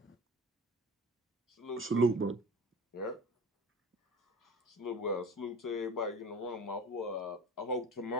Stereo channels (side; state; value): both; normal; correlation 0.38